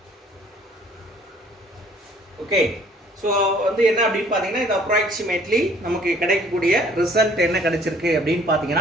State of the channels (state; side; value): normal; both; correlation 0.57